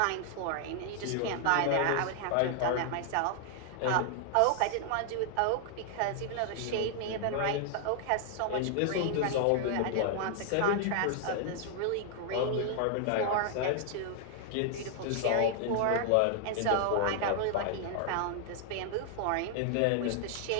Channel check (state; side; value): different; both; correlation 0.00